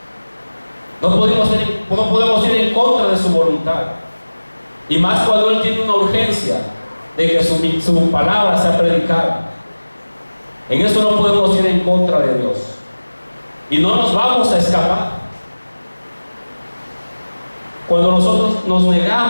No podemos ir en contra de su voluntad. Y más cuando Él tiene una urgencia de que su palabra sea predicada. En eso no podemos ir en contra de Dios. Y no nos vamos a escapar. Cuando nosotros nos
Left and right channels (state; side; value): inverted; both; correlation -1.00